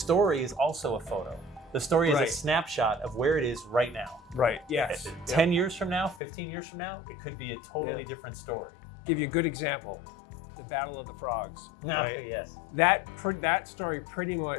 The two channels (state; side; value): drops out; right; at 6.2 s